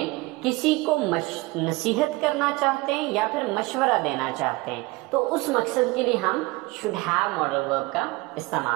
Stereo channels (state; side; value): quieter; left; 22.3 dB